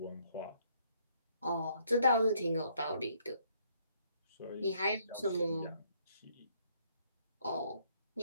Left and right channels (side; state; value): both; inverted; correlation -0.68